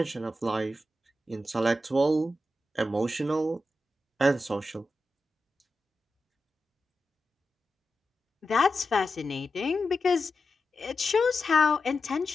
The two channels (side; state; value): both; normal; correlation 0.90